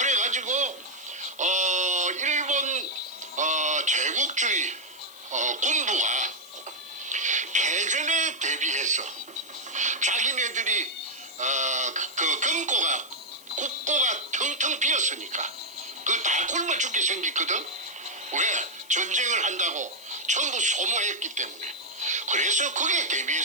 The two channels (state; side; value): noise; left; hiss, 21 dB below the sound